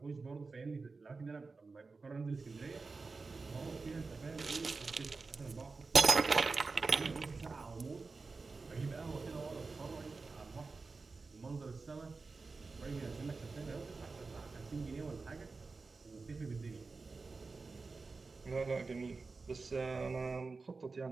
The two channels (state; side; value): quieter; left; 4.1 dB